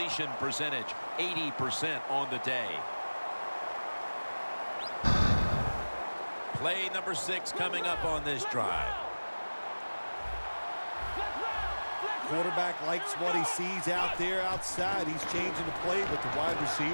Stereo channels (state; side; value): inverted; both; correlation -1.00